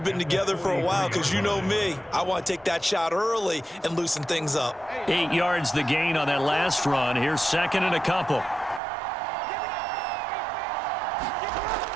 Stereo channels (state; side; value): drops out; left; at 8.8 s